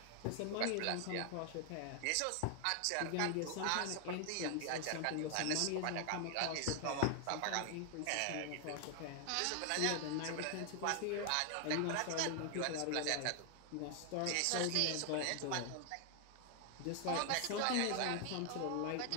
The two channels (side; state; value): both; different; correlation 0.00